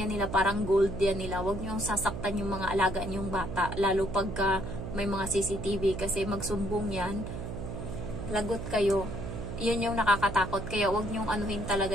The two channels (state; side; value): noise; right; hum, 7 dB below the sound